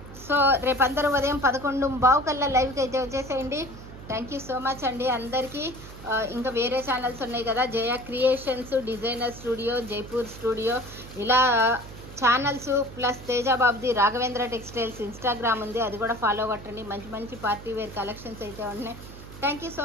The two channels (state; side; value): noise; right; hum, 15 dB below the sound